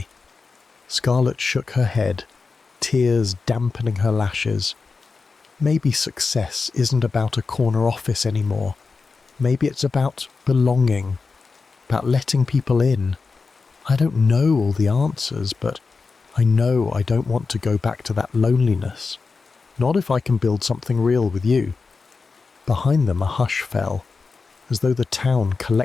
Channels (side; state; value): right; quieter; 4.5 dB